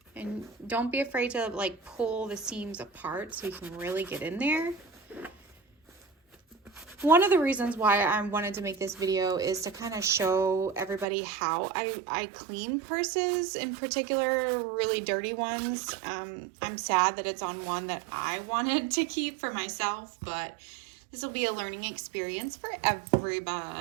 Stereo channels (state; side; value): drops out; left; at 11.1 s